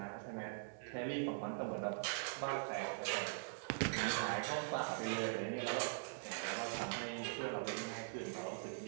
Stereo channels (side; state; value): left; silent; digital silence